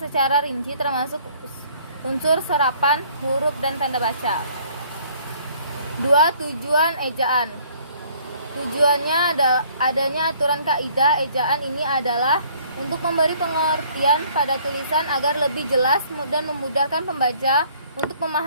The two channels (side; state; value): both; inverted; correlation -0.59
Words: secara rinci termasuk unsur serapan, huruf, dan tanda baca. 2. Tujuan ejaan. Tujuannya adanya aturan kaidah ejaan ini adalah untuk memberi pengertian pada tulisan agar lebih jelas dan memudahkan pembaca untuk